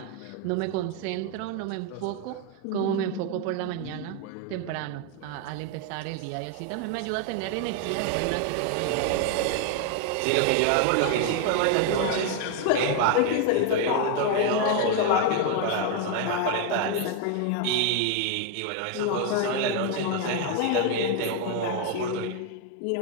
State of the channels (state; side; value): different; both; correlation 0.01